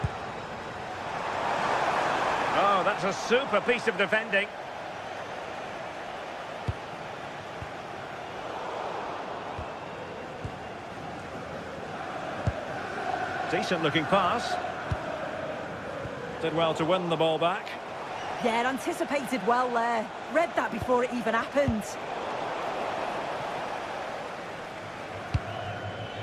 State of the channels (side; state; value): both; identical; correlation 1.00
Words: Oh, that's a super piece of defending. Decent looking pass. Did well to win the ball back. Yeah, anticipated well there. Read that before it even happened.